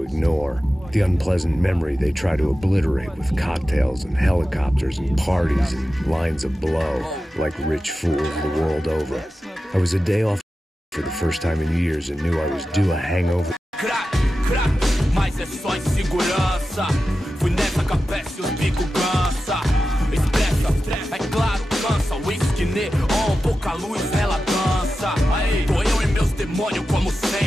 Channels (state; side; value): normal; both; correlation 0.93